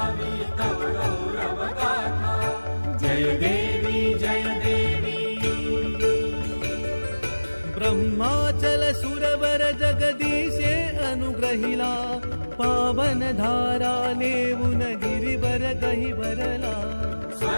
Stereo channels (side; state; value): both; inverted; correlation -1.00